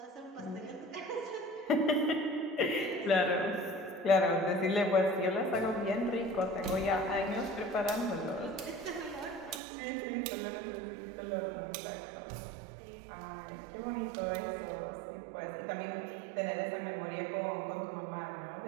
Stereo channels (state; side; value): drops out; left; at 9.6 s